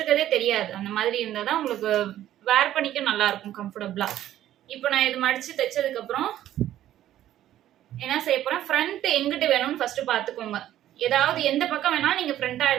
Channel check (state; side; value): quieter; left; 12.6 dB